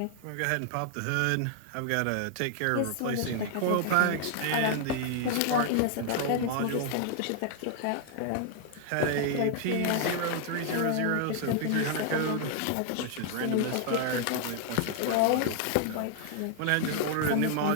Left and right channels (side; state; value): both; different; correlation 0.00